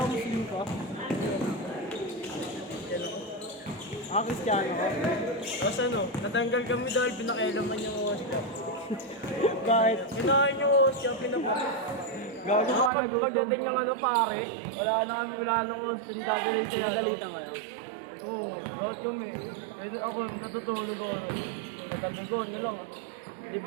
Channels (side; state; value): left; drops out; at 12.9 s